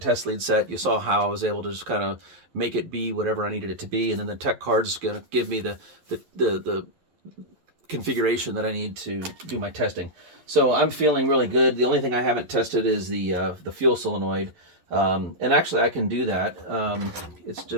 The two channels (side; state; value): left; late; 11 ms